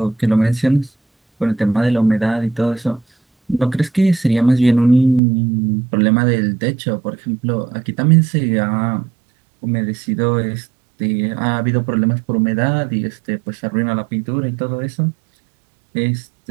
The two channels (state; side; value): drops out; left; at 5.2 s